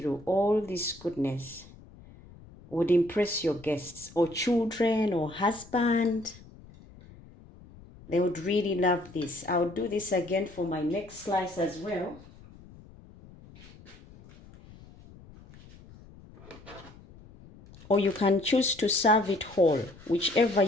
All this goodness would impress your guests or children or husband. They would really love this. I'll do this again for my next slice as well. Or you can choose to serve it whole, whichever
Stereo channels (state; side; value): noise; left; rumble, 21 dB below the sound